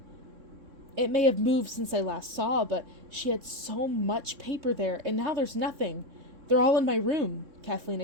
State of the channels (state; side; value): late; left; 3.3 ms